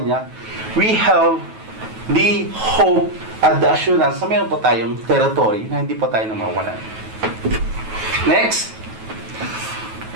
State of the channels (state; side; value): late; left; 9.3 ms